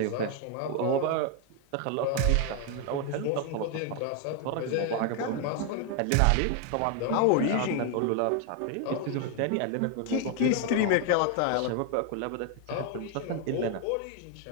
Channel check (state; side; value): different; both; correlation 0.01